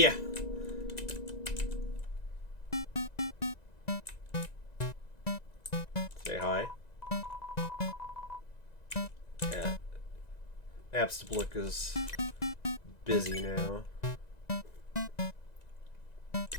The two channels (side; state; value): right; late; 1.9 ms